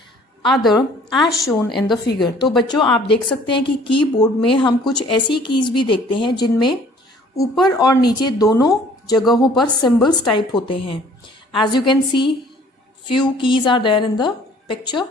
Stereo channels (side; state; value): both; normal; correlation 0.55